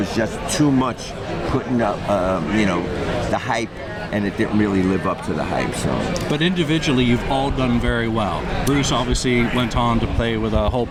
just too much putting up the hype, and it didn't really live up to the hype. So, but individually, you've all done very well. Bruce obviously went on to play with a whole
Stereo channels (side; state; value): both; identical; correlation 1.00